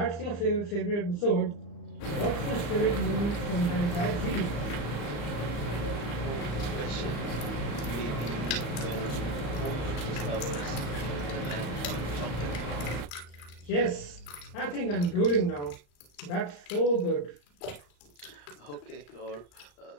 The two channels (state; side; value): late; right; 35 ms